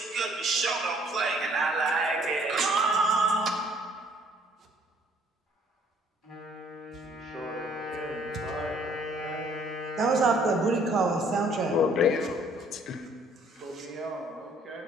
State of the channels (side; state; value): both; normal; correlation 0.61